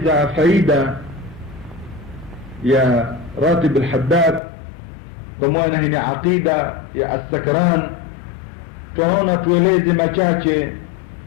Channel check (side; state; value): right; drops out; at 4.4 s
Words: faida ya Ratib al-Haddad kwa maana hii ni aqida ya as-Sakran. Tunaona tueleze machache